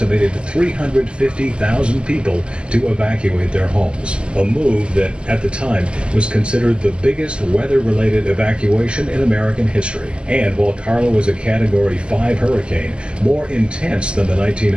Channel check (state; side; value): late; left; 0.055 ms